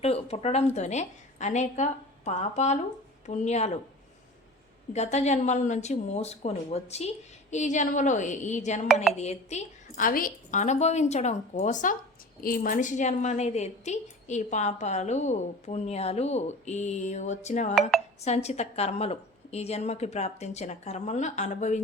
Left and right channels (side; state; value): both; normal; correlation 0.37